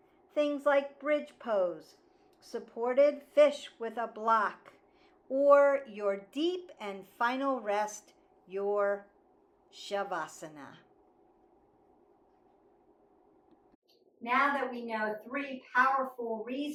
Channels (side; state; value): both; identical; correlation 1.00